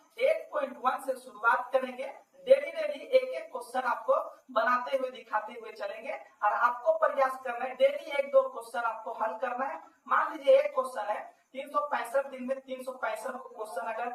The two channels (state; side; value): identical; both; correlation 1.00